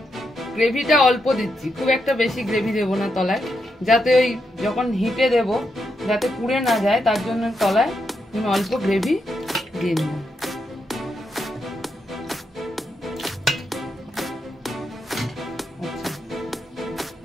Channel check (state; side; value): normal; both; correlation 0.83